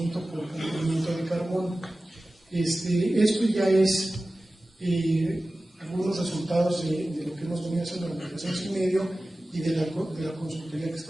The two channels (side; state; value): both; normal; correlation 0.96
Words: por cumplimiento de carbono. Esto ya es algunos resultados de lo que hemos venido haciendo durante 2 años y medio y de la consultoría que